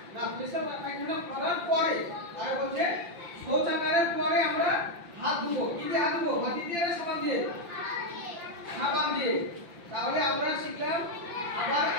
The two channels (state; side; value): late; left; 5.8 ms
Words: না, পেশাব পায়খানা করার পরে। আর বলছে শৌচাগারের পরে আমরা হাত ধুবো। কি দিয়ে হাত ধুবো? মাটি দিয়ে না সাবান দিয়ে? সাবান দিয়ে। তাহলে আমরা শিখলাম আবার